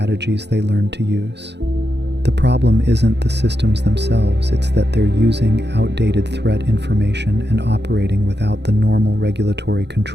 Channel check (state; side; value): late; left; 0.50 ms